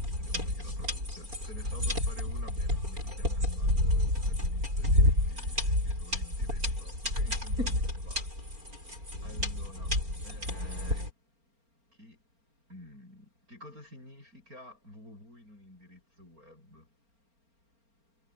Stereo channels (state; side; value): late; left; 4.4 ms